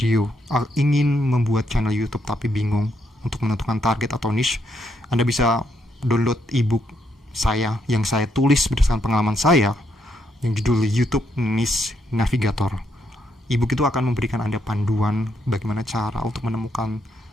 ingin membuat channel YouTube tapi bingung untuk menentukan target atau niche, Anda bisa download ebook saya yang saya tulis berdasarkan pengalaman saya, yang judul YouTube Niche Navigator. Ebook itu akan memberikan Anda panduan bagaimana cara untuk menemukan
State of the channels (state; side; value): normal; both; correlation 0.76